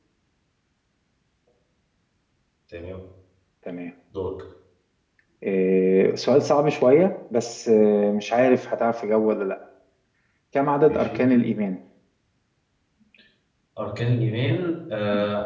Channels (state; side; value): identical; both; correlation 1.00